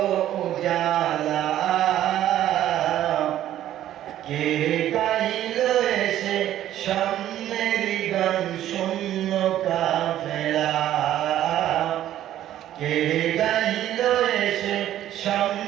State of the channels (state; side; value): quieter; left; 12.4 dB